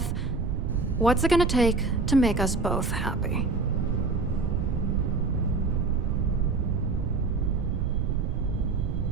What's it gonna take to make us both happy?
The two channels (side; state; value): right; noise; rumble, 1 dB below the sound